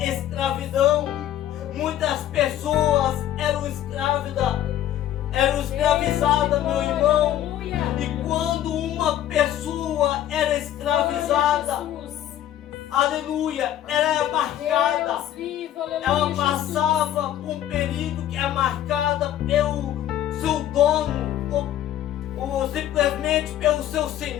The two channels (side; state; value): right; quieter; 12.0 dB